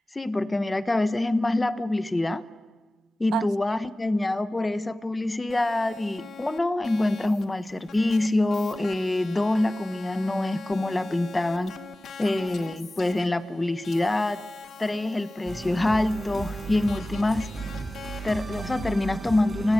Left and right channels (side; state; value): both; normal; correlation 0.97